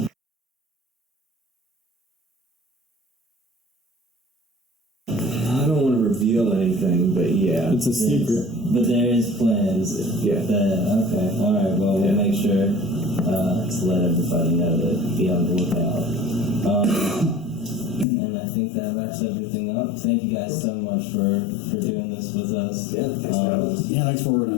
I don't want to reveal anything, but yeah. It's a secret. But there is plans. Yeah. Okay. All right. Well, we'll make sure to let everybody know to be on the lookout. And I think that wraps everything up. Thank you guys so much for doing this with us. Yeah, thanks for having us. Yeah, thanks for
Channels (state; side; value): drops out; right; at 18.1 s